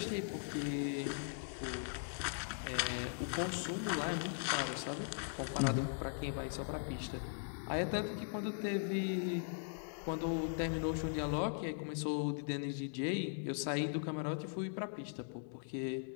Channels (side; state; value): right; silent; digital silence